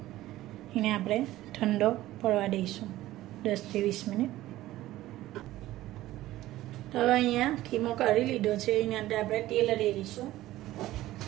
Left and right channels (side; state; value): left; quieter; 15.7 dB